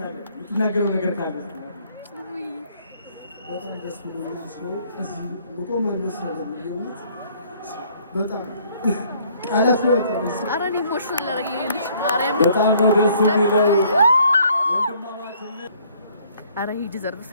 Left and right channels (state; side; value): inverted; both; correlation -0.62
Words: የምትናገረው ነገር ካለ በጣም ደስ ብሎኛል ሰው እዚህ መቆም አልመሰለኝም የእውነት በጣም ቃላት ይወጣል ኧረ እኔ ኢሞሽናል ያደረገኝ ልጅ ማርያም በጣም ነው ደስ የሚለው ወንድማማችነት ኧረ ሂ ዲዘርቭስ